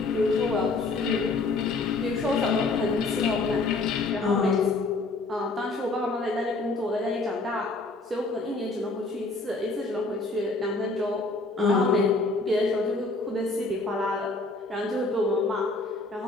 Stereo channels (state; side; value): quieter; right; 3.4 dB